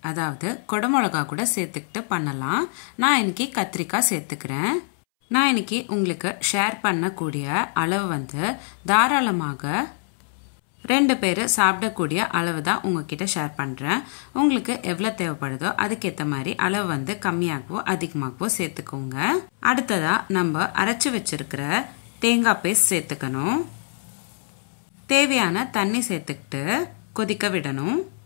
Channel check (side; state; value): right; silent; 63 dB below the other